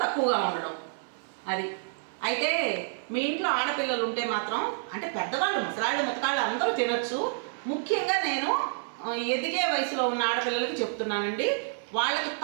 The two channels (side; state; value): left; silent; 55 dB below the other